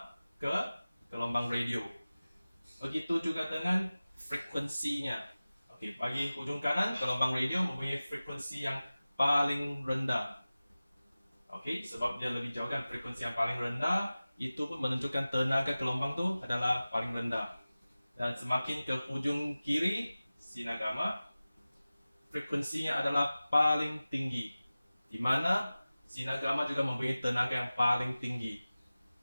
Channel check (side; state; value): both; inverted; correlation -0.97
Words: ke gelombang radio. Begitu juga dengan frekuensinya. Okey, bagi hujung kanan, gelombang radio mempunyai frekuensi yang paling rendah. Okey, sebab dia lebih jauh kan, frekuensi yang paling rendah itu pun menunjukkan tenaga gelombang tu adalah paling rendah. Dan semakin ke hujung kiri, sinar gamma, frekuensinya adalah paling tinggi, di mana sinar gamma juga mempunyai tenaga yang paling tinggi.